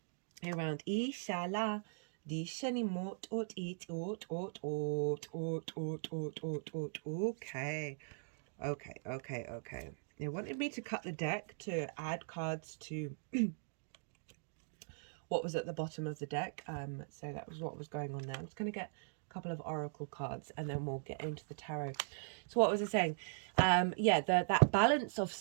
around ishala dishani mot ot it ot. Okay. They wanted me to cut the deck to add cards to what was at the bottom of the deck. So that was what was going on there. I'm just going to get couple of oracle cards and then we'll get into the tarot. So what was I saying? That balance of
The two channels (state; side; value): silent; left; digital silence